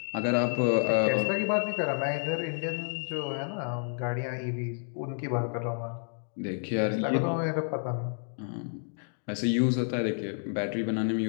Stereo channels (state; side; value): silent; right; 58 dB below the other